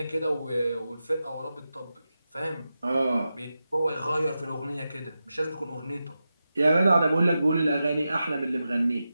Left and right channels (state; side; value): inverted; both; correlation -0.91